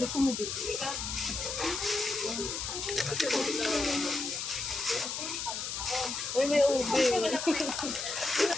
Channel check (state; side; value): noise; left; hiss, 4 dB below the sound